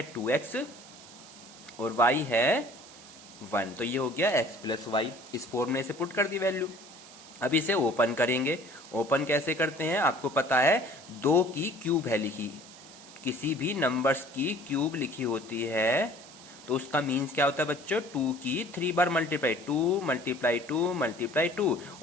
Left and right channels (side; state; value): right; noise; hiss, 19 dB below the sound